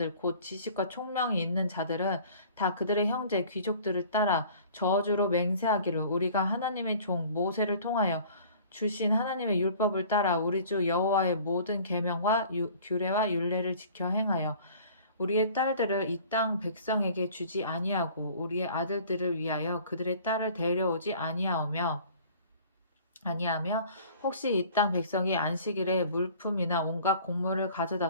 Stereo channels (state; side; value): inverted; both; correlation -0.48